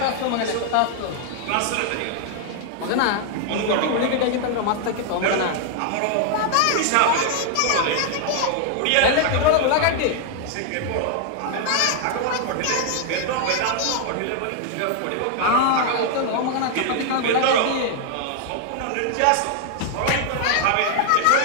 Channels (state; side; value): different; both; correlation 0.00